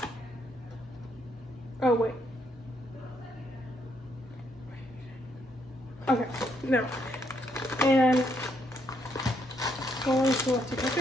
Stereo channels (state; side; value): normal; both; correlation 0.74